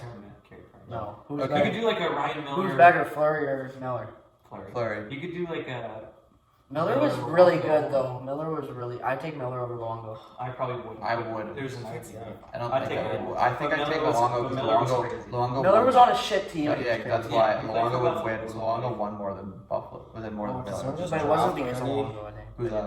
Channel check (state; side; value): identical; both; correlation 1.00